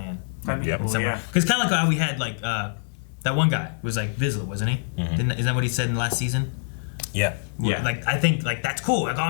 That'd be cool, yeah. Because kind of like how we had like that one guy was like Vizsla, wasn't he? Mm-hmm. Isn't that what he said in the last season? Yeah. Yeah. Like I think like that's cool. Like, oh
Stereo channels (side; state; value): right; silent; digital silence